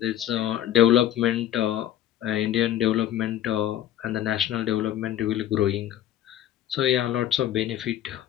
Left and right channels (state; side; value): quieter; right; 11.8 dB